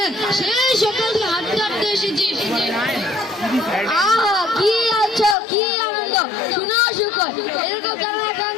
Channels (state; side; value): drops out; right; at 5.4 s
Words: সেই সকাল থেকে হাঁটতে হাঁটতে এসেছি আহা কি আছো কি আনন্দ শুনেও শুকর এরকম